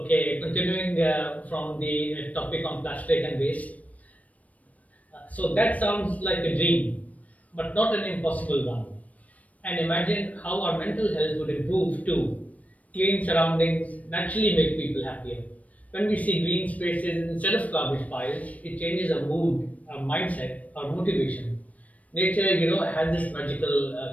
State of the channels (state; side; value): late; right; 0.069 ms